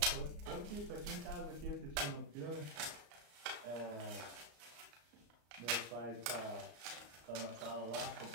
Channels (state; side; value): late; left; 34 ms